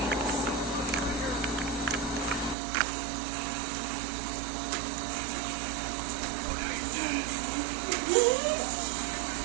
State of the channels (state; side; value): drops out; left; at 2.6 s